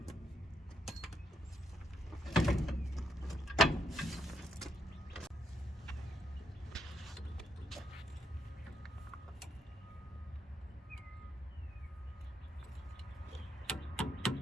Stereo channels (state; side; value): normal; both; correlation 0.77